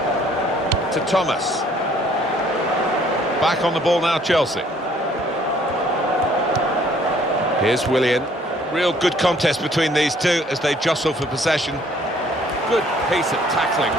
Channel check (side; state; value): both; normal; correlation 0.61